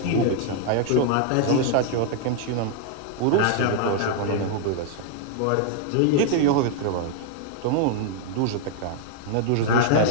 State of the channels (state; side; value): different; both; correlation 0.00